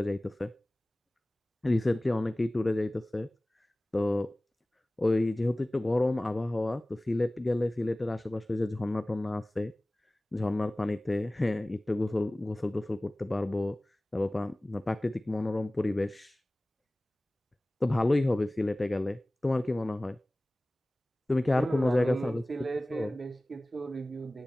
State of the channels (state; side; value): normal; both; correlation 0.98